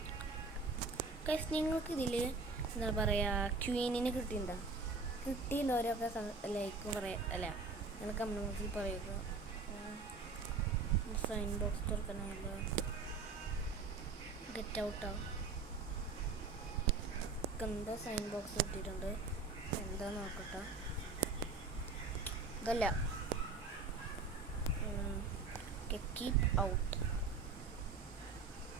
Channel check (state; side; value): quieter; left; 4.1 dB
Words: നിങ്ങൾക്ക് ഇതിൽ എന്താ പറയുക ക്വീനിനെ കിട്ടിയിട്ടുണ്ടോ? കിട്ടിയില്ലവരൊക്കെ ലൈക്കും പറയാം അല്ല നിങ്ങൾ കമ്മ്യൂണിറ്റിയിൽ പറയുക. സൈൻ ബോക്സ് തുറക്കാനല്ലോ ഗെറ്റ് ഔട്ടാവും. എന്തോ സൈൻ ബോക്സ് കിട്ടിയിട്ടുണ്ട്. എന്താ നോക്കട്ടെ. ഇതല്ല കീപ് ഔട്ട്